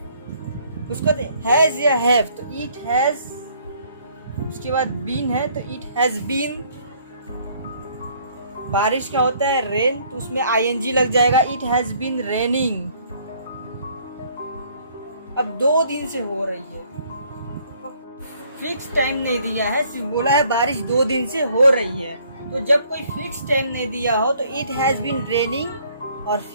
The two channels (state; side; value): inverted; both; correlation -0.62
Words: उसको हैज या हैव, तो इट हैज, उसके बाद बीन है तो इट हैज बीन। बारिश का होता है रेन, तो उसमें आईएनजी लग जाएगा, इट हैज बीन रेनिंग। अब 2 दिन से हो रही है, फिक्स टाइम नहीं दिया है, सिर्फ बोला है बारिश 2 दिन से हो रही है। तो जब कोई फिक्स टाइम नहीं दिया हो तो इट हैज बीन रेनिंग, और